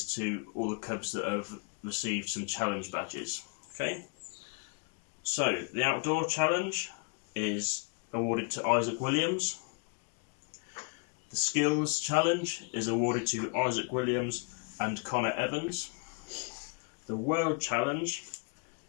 to all the cubs that have received some challenge badges. Okay? So, the outdoor challenge is awarded to Isaac Williams. The skills challenge is awarded to Isaac Williams and Connor Evans. The world challenge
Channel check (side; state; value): right; quieter; 37.7 dB